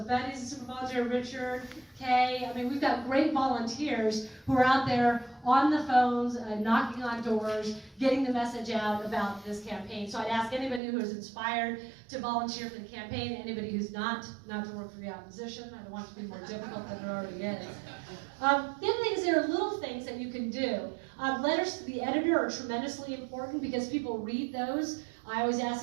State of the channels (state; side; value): drops out; left; at 10.8 s